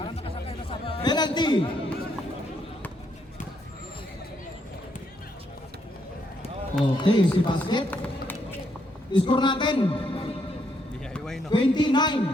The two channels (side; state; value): both; normal; correlation 0.74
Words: Penalty. Okay, si basket. Score natin. 29.